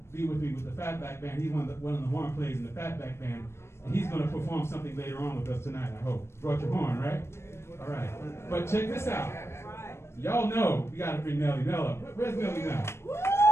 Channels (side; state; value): right; late; 0.13 ms